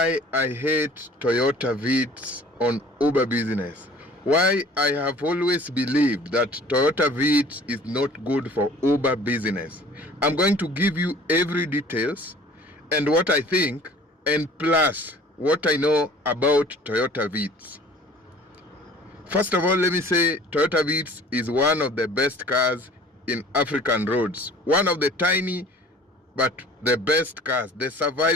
I hate Toyota Vitz on Uber business. Why I have always believed that Toyota Vitz is not good for Uber business. I'm going to give you every details and what I think, and plus what I know about Toyota Vitz. First of all, let me say Toyota Vitz is one of the best cars in African roads. One of the tiny but the best cars, the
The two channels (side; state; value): both; normal; correlation 0.49